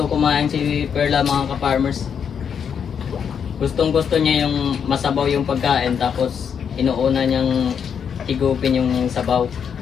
kumain si Perla mga ka-farmers. Gustong gusto niya yung masabaw yung pagkain, tapos inuuna niyang higupin yung sabaw.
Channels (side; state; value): right; quieter; 7.4 dB